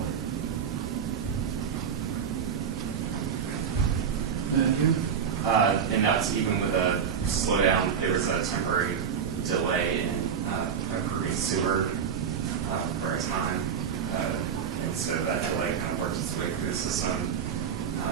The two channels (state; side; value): quieter; left; 7.4 dB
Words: And that's even with a slowdown. There was a temporary delay in approving sewer for a time, and so that delay kind of worked its way through the system